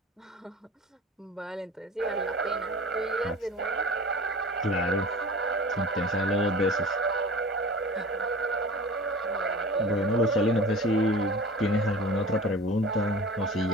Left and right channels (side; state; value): both; normal; correlation 0.38